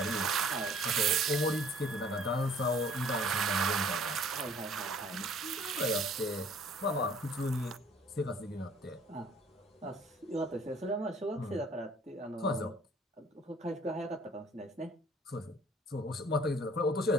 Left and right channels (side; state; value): both; normal; correlation 0.56